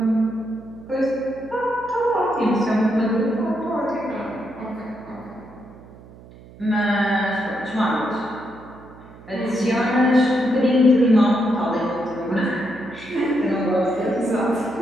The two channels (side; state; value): right; noise; hum, 20 dB below the sound